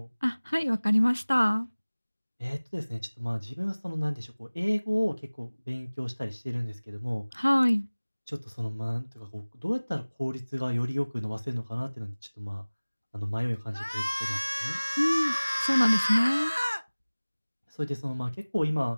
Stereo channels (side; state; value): both; inverted; correlation -1.00